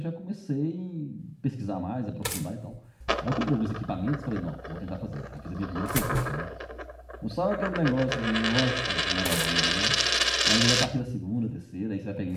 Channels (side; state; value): both; identical; correlation 1.00